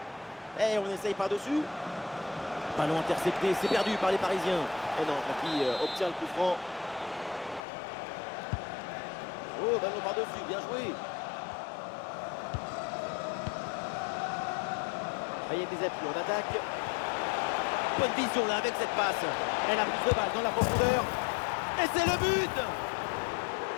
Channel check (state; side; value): drops out; right; at 7.6 s